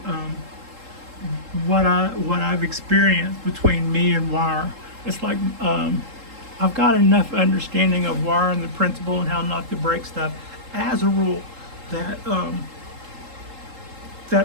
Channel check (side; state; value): left; late; 3.7 ms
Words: what I've experienced between me and wire. It's like I've got enough understanding of wire and the principle and how not to break stuff as a rule that